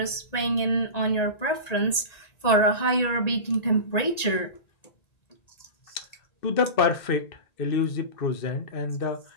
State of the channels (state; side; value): late; right; 1.9 ms